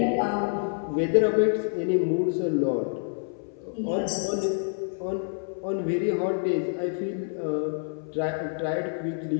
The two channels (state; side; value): silent; right; 59 dB below the other